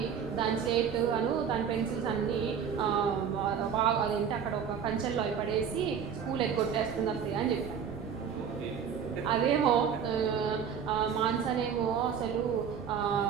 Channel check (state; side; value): quieter; left; 7.4 dB